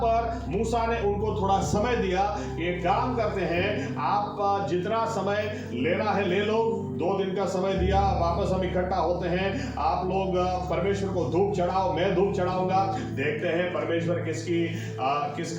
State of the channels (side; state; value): both; identical; correlation 1.00